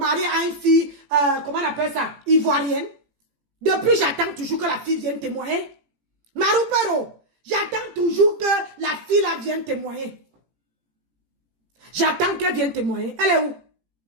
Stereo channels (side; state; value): left; late; 18 ms